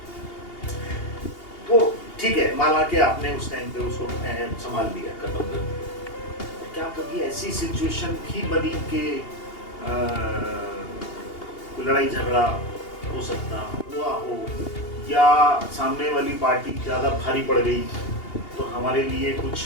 तो ठीक है, माना कि आपने उस टाइम पे उसको संभाल लिया, खत्म कर दिया, क्या कभी ऐसी सिचुएशन भी बनी कि कोई लड़ाई झगड़ा हो सकता हुआ हो या सामने वाली पार्टी ज्यादा भारी पड़ गई तो हमारे लिए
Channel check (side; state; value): right; late; 2.8 ms